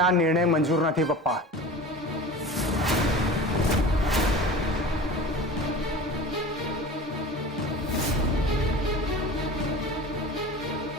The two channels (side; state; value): both; normal; correlation 0.36